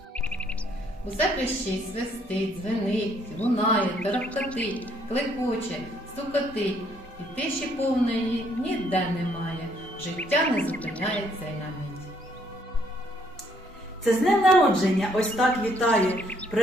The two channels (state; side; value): normal; both; correlation 0.67